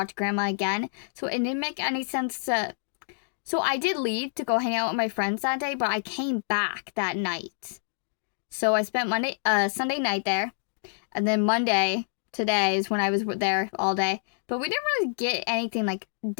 Grandma again, so it didn't make any sense to... So I did leave to go hang out with my friends that day, but I came back that night. So I spent Sunday night there, and then Monday, today, is when I was there all day. But we didn't really get anything, like,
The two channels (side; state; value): right; silent; digital silence